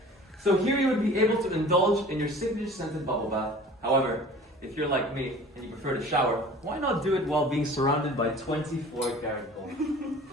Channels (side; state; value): both; normal; correlation 0.44